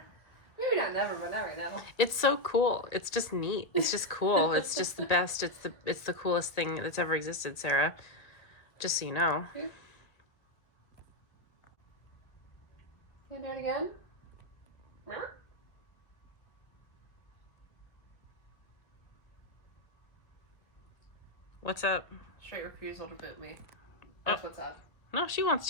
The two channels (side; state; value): right; late; 1.8 ms